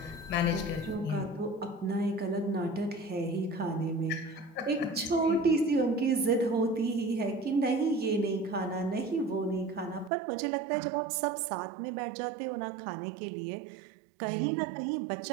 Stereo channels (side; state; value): left; drops out; at 10.1 s